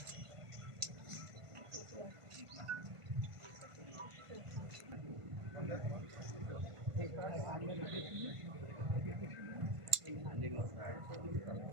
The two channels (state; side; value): late; left; 1.5 ms